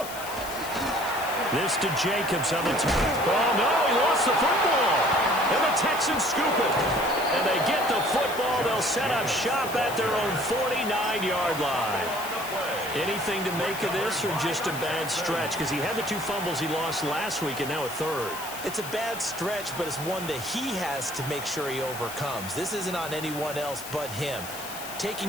This to Jacobs on the turn. Oh, no, he lost the football. And the Texans scoop it. And they get the football. They'll set up shop at their own 49-yard line. Anything to make of this or just a bad stretch? Because he had the 2 fumbles he lost last week and now a third. It's a bad stretch, but it's one that he has to make sure he overcomes. This isn't on anyone else but him. Taking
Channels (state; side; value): noise; left; hiss, 11 dB below the sound